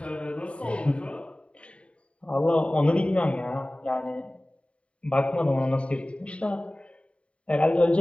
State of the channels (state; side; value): late; right; 0.060 ms